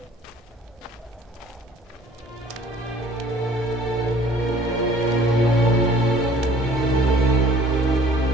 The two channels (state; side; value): normal; both; correlation 0.53